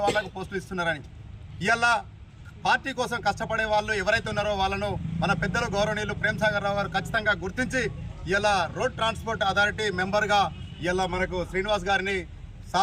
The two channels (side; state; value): both; identical; correlation 1.00